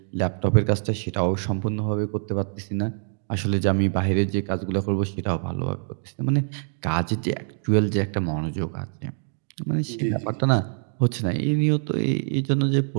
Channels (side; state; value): left; silent; 62 dB below the other